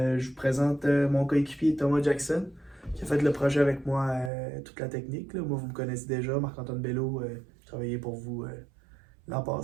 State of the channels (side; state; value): left; drops out; at 4.3 s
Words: vous présente mon coéquipier Thomas Jackson qui a fait le projet avec moi, toute la technique, là. Moi, vous me connaissez déjà, Marc-Antoine Bello, j'ai travaillé pour vous l'an